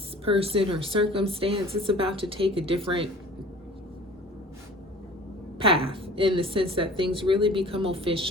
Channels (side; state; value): both; normal; correlation 0.45